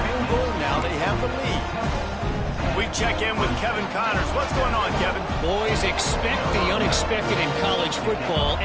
field goal, now they have the lead. We check in with Kevin Connors. What's going on, Kevin? Boys, expect the unexpected in college football,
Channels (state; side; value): identical; both; correlation 1.00